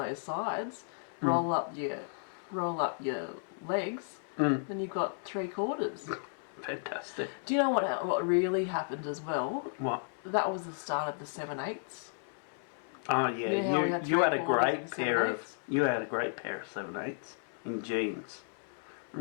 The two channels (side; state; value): right; silent; 55 dB below the other